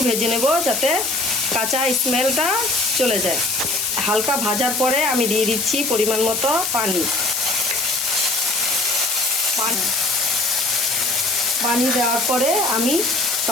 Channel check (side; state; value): left; noise; hiss, 2 dB below the sound